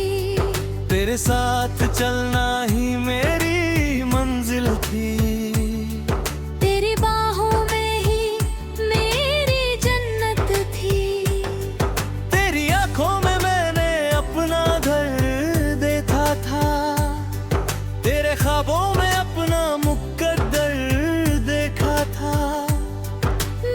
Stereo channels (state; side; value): identical; both; correlation 1.00